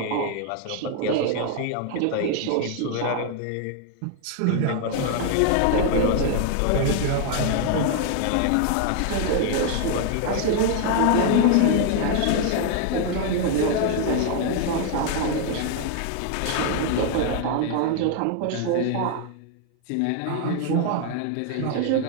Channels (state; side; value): different; both; correlation 0.00